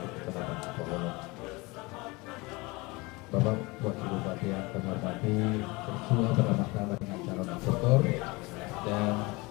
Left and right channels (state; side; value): quieter; right; 24.5 dB